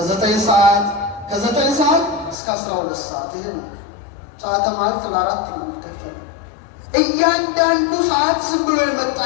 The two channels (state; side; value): drops out; right; at 2.4 s